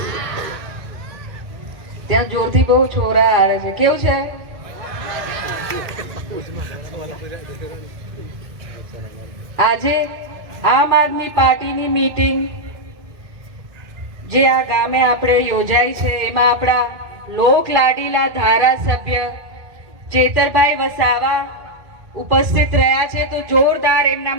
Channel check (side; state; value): left; late; 2.1 ms